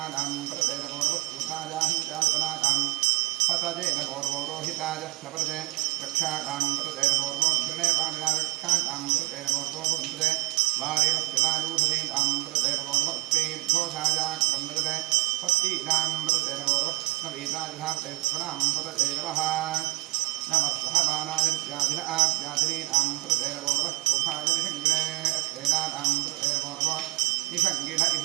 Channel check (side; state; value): left; quieter; 18.6 dB